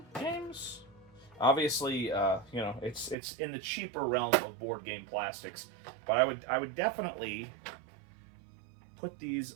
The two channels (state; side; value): drops out; left; at 3.2 s